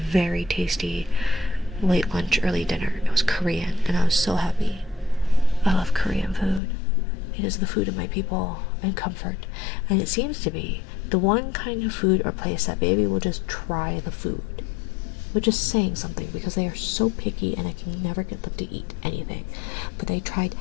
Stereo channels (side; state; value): right; drops out; at 6.6 s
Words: very tasty late lunch, early dinner. It was Korean, and I was so happy. I love Korean food. It is the food of my people and comfort. And it seems to be the one kind of food or place that baby will just try the food. Which is saying something, because they are so picky and I can never get them to eat anything. But they tried